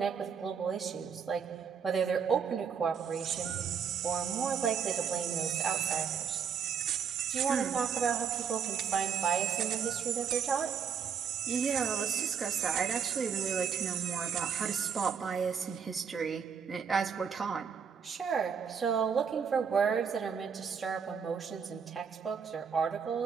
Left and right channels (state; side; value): quieter; left; 6.9 dB